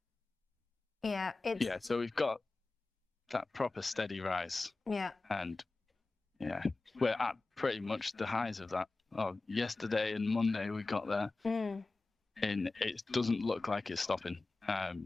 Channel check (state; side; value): quieter; right; 3.4 dB